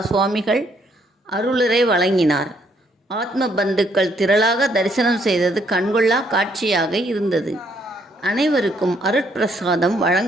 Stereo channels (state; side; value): normal; both; correlation 0.70